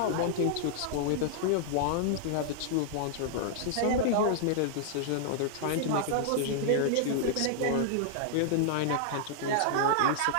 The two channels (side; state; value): both; different; correlation -0.01